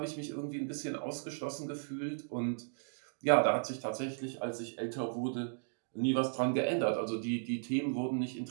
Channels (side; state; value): left; silent; digital silence